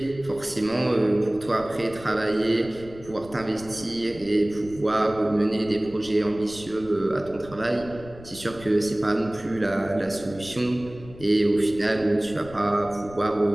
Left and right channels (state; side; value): noise; left; rumble, 18 dB below the sound